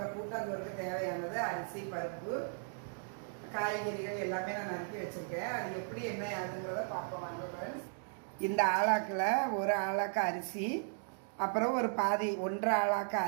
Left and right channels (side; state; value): left; silent; digital silence